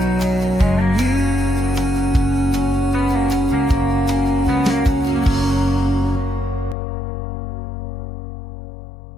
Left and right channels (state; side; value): drops out; right; at 6.8 s